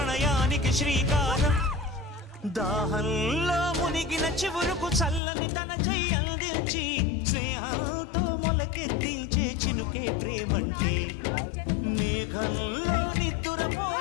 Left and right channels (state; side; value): drops out; right; at 5.2 s